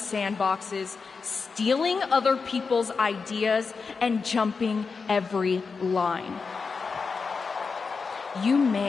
sandboxes, stealing other people's ideas, and jumping every line. You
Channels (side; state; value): right; quieter; 4.9 dB